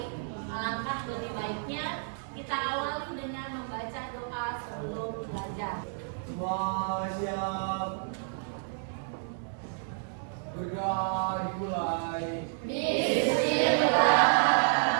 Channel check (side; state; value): left; silent; digital silence